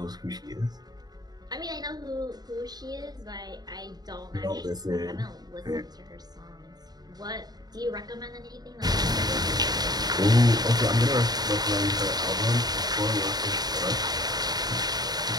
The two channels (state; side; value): late; left; 0.19 ms